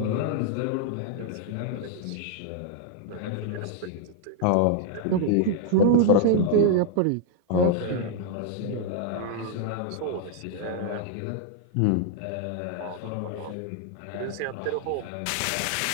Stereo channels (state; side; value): different; both; correlation -0.01